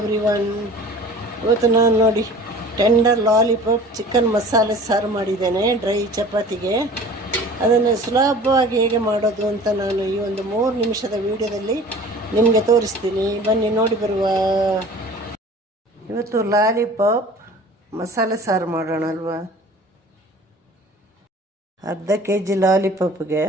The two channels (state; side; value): normal; both; correlation 0.44